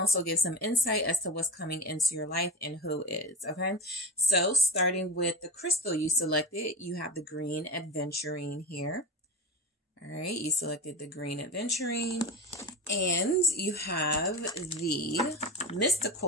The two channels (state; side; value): normal; both; correlation 0.27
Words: give some insight as to what's coming into your life and who is, okay? So starting with the crystal you selected, you have the green adventurine here. All right, you selected the green adventurine, and you have the